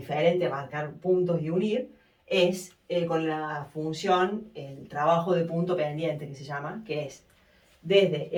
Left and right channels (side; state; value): both; identical; correlation 1.00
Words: de marcar puntos y unir es con la función, el trabajo de punto pendiente que se llama, que es desde